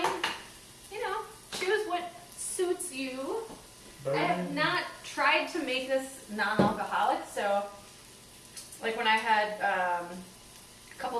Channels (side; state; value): both; identical; correlation 1.00